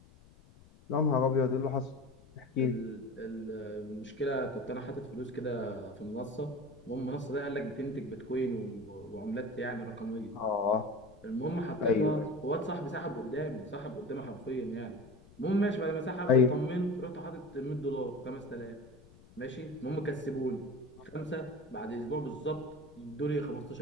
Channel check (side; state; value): left; noise; rumble, 24 dB below the sound